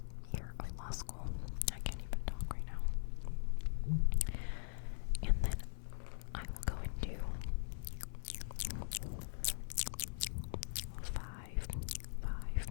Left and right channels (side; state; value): right; silent; 50 dB below the other